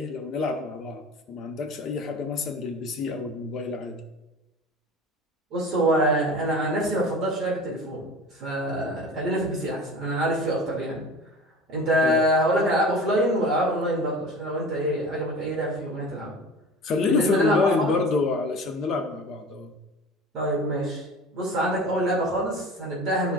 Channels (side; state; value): both; normal; correlation 0.38